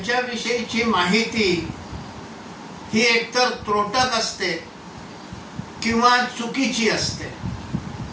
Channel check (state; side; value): identical; both; correlation 1.00